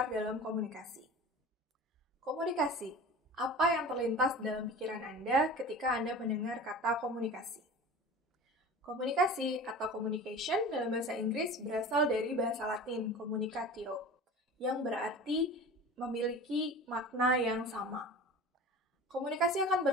dalam komunikasi. Komunikasi, apa yang terlintas dalam pikiran Anda ketika Anda mendengar kata komunikasi? Komunikasi atau communication dalam bahasa Inggris berasal dari bahasa Latin communicatio, yang berarti memiliki makna yang sama. Komunikasi akan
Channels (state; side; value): normal; both; correlation 0.36